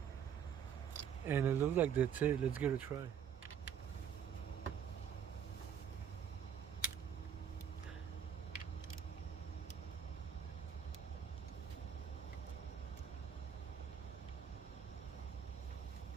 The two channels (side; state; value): left; quieter; 8.3 dB